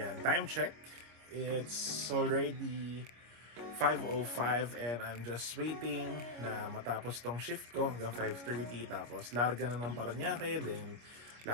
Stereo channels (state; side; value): late; left; 25 ms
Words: time check. It's already 5:05 and I'm just waiting na matapos tong shift ko hanggang 5:30. Tapos larga na ng Parañaque, then